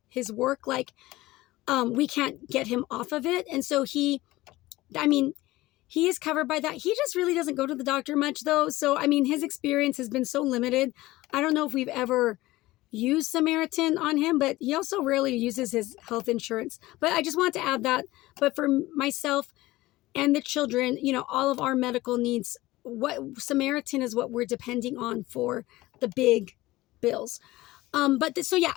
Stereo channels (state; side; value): quieter; right; 18.3 dB